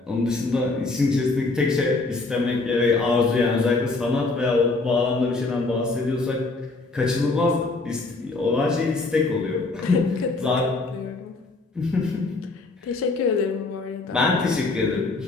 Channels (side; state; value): right; quieter; 3.5 dB